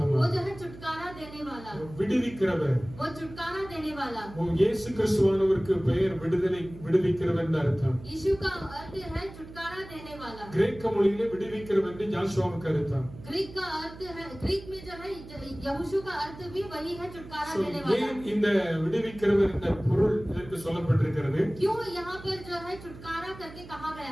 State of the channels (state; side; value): noise; right; hum, 16 dB below the sound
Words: वो जो है छुटकारा देने वाला. விடுவிக்கிறவர். वो छुटकारा देने वाला. वो இயேசு கிறிஸ்துவானவருக்கு பெயர் விடுவிக்கிறவர் என்ற அர்த்தம். यीशु का अर्थ है छुटकारा देने वाला. கிரேக்க மொழியிலே விடுவிக்கிறவர் என்று ஜோஷுவாவுக்கு அர்த்தம். ग्रीक का अर्थ है, ग्रीक में जो है यहोशू का अर्थ भी वही है, छुटकारा देने वाला. ஏன் இந்த விடுவிக்கிறவர் என்ற பொருள் இதற்கு சொல்லப்பட்டிருக்கிறது? क्यों यहाँ पर जो है छुटकारा करके कहा